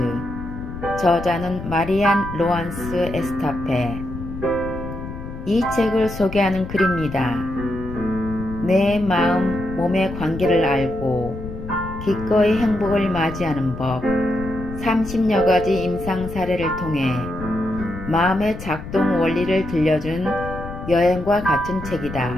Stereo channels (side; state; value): left; noise; rumble, 10 dB below the sound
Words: 저자는 마리안 로안스 에스타페. 이 책을 소개하는 글입니다. 내 마음, 몸의 관계를 알고 기꺼이 행복을 맞이하는 법, 30여 가지 임상 사례를 통해 마음의 작동 원리를 들려준 여행과 같은 책이다.